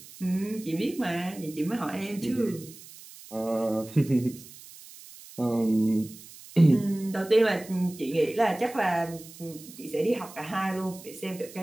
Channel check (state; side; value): noise; right; hiss, 18 dB below the sound